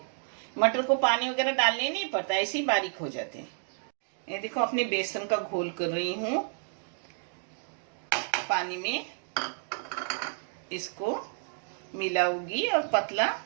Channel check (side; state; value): left; silent; 58 dB below the other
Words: मटर को पानी वगैरह डालने नहीं पड़ता, ऐसे ही बारीक हो जाते हैं। ये देखो, अपने बेसन का घोल कर रही हूँ पानी में, इसको मिलाऊंगी और पतला